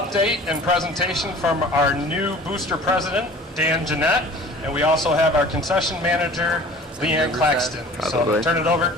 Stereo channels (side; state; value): both; normal; correlation 0.45